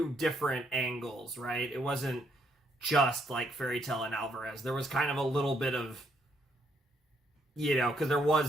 different angles, right? It wasn't just like Fairy Tail and Alvarez. There was kind of a little bit of, you know, because there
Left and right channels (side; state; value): both; normal; correlation 0.73